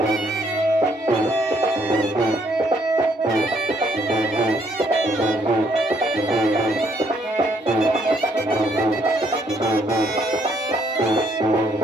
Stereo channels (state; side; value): normal; both; correlation 0.69